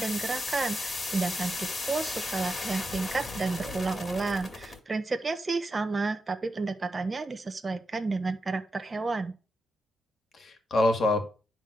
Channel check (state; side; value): normal; both; correlation 0.87